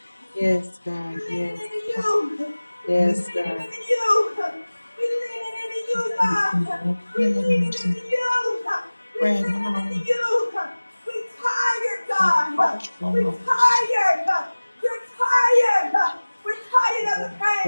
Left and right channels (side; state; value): both; inverted; correlation -1.00